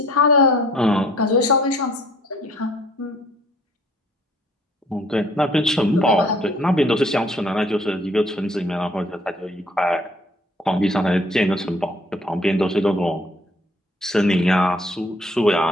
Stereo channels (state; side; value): normal; both; correlation 0.59